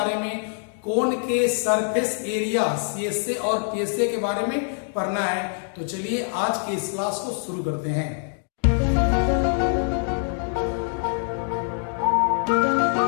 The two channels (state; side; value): silent; right; 62 dB below the other